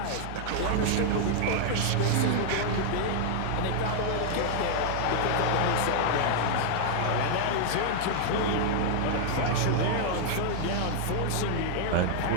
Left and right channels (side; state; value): both; different; correlation -0.01